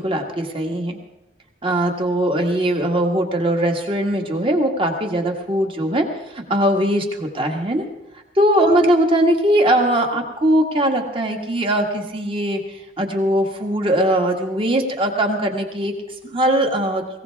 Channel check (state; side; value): normal; both; correlation 0.54